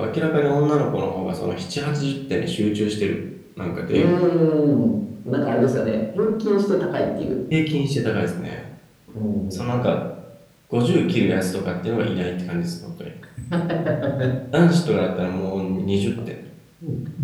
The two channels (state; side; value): identical; both; correlation 1.00